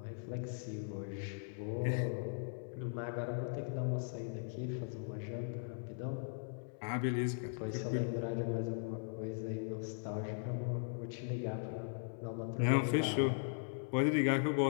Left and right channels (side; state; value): right; silent; 52 dB below the other